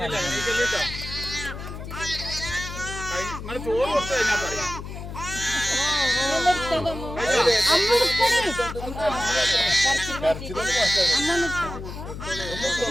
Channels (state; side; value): noise; left; hum, 9 dB below the sound